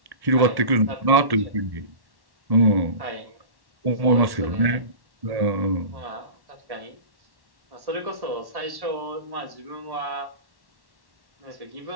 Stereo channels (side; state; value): left; late; 1.1 ms